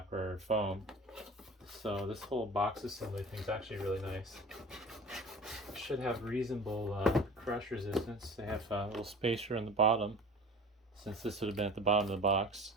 or foam. So this whole box assembly thing is actually really nice. It should have reasonable crush resistance. They have a little spacer on the bottom, since this would have been at the bottom of the box.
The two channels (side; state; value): both; normal; correlation 0.41